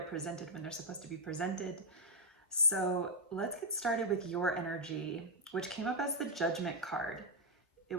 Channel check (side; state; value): both; normal; correlation -0.02